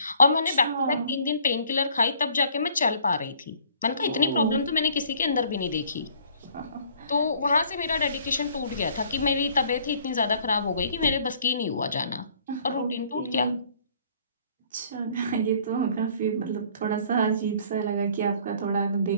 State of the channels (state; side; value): inverted; both; correlation -0.57